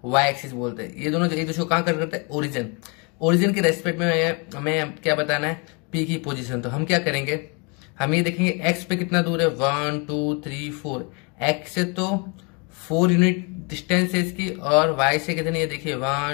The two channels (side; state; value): right; quieter; 32.4 dB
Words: वाई एक्सिस बोलते हैं, ये दोनों एक दूसरे को कहाँ कट करते हैं, ओरिजिन। ओरिजिन के रेस्पेक्ट में हमें क्या बताना है, P की पोजीशन। तो हम क्या करेंगे, हम ये देखेंगे एक्स पे कितना दूर है, 1 2 3 4। एक्स से तो 4 यूनिट डिस्टेंस है इसकी, और वाई से कितनी है, देखिए